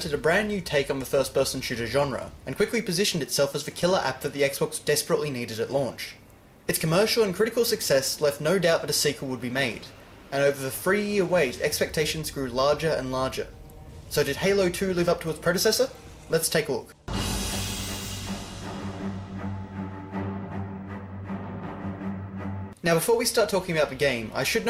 a brand new take on the first-person shooter genre, and quickly positioned itself as the killer app that the Xbox desperately needed at launch. Its commercial and critical success left no doubt that a sequel would be made, and over the 3-year wait, expectations grew larger and larger. So did Halo 2 live up to its predecessor? Let's take a look. Now before we start talking about the game, I should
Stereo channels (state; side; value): identical; both; correlation 1.00